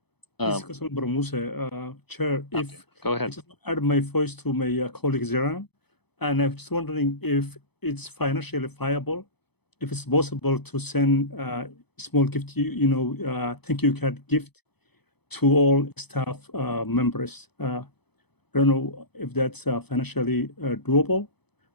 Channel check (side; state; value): right; late; 0.98 ms